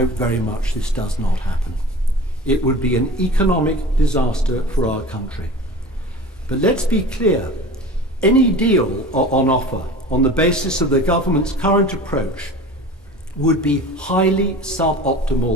very much this does not happen. It would be an economic disaster for our country. But let's be clear, any deal on offer on the basis of the government's current approach would be highly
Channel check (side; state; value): both; normal; correlation 0.37